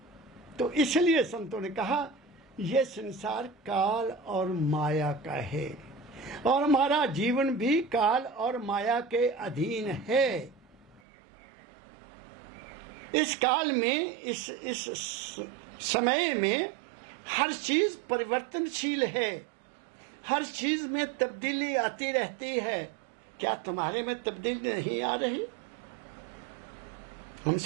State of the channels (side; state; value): left; drops out; at 11.0 s